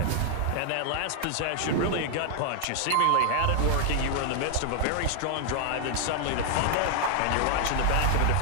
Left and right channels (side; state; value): both; different; correlation 0.00